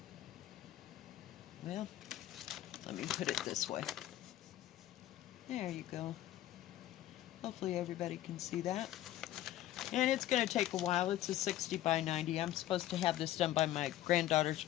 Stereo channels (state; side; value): quieter; right; 13.8 dB